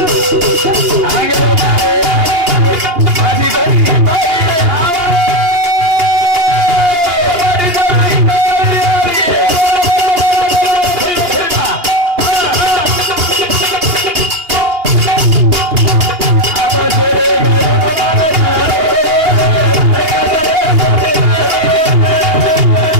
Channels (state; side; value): late; left; 2.8 ms